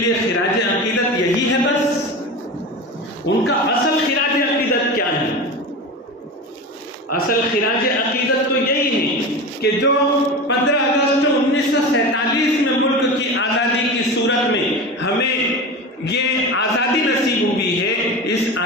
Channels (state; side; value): normal; both; correlation 0.27